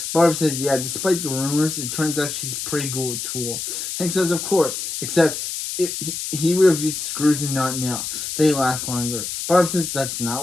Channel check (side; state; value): left; noise; hiss, 5 dB below the sound